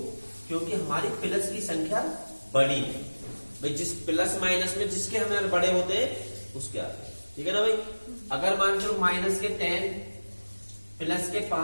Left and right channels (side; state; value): both; inverted; correlation -1.00